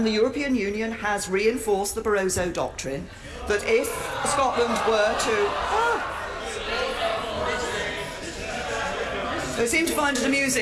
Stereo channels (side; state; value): both; identical; correlation 1.00